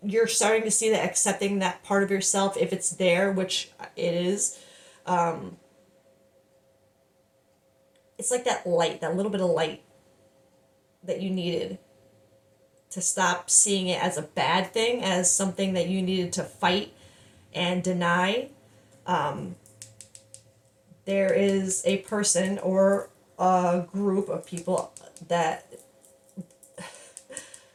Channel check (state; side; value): identical; both; correlation 1.00